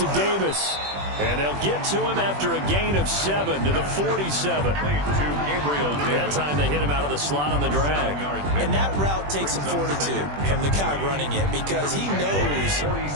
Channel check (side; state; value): left; late; 21 ms